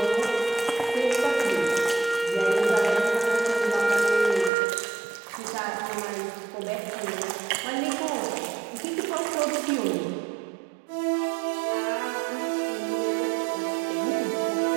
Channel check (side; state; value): left; drops out; at 4.5 s